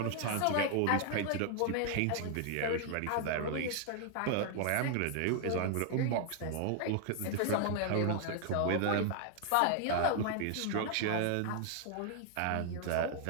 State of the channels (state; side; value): different; both; correlation 0.00